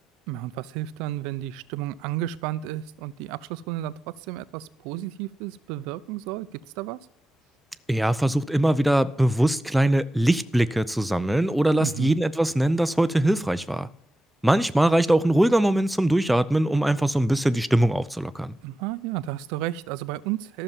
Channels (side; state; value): both; normal; correlation 0.91